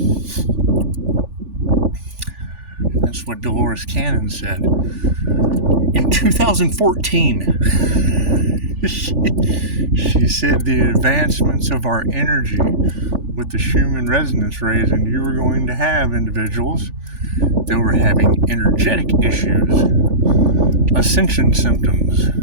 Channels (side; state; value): left; late; 3.4 ms